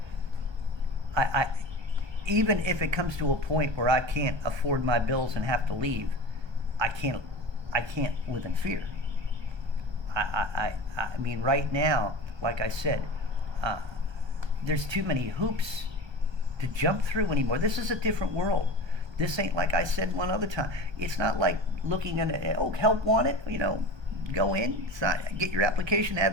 I even if it comes to a point where I can't afford my bills and have to leave, I can't live in fear. I mean, right now, like I said, there's too many hoops to jump through anymore. This is a different world. This ain't, like I said one other time, it's not like looking at, help wanted, go in, get your application, have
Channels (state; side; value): late; left; 1.3 ms